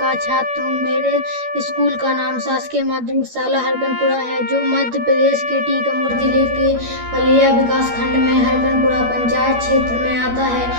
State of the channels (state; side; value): late; left; 12 ms